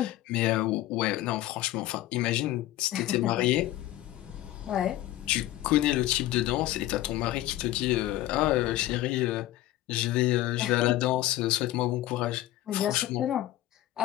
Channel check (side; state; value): right; quieter; 15.2 dB